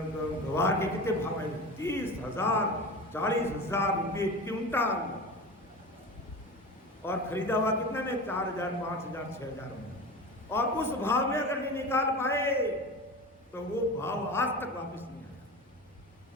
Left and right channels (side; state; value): both; normal; correlation 0.30